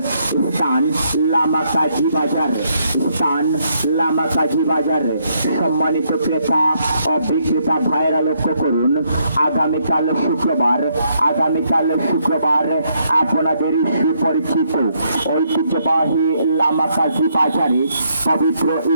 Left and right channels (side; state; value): both; inverted; correlation -0.74